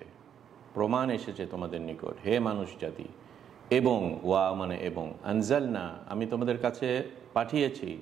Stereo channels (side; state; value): left; quieter; 8.9 dB